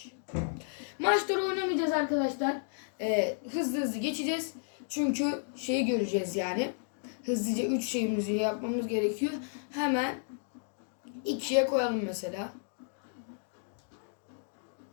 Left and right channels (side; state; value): right; silent; digital silence